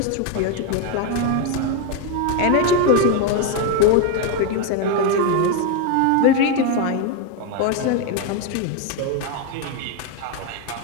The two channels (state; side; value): different; both; correlation 0.02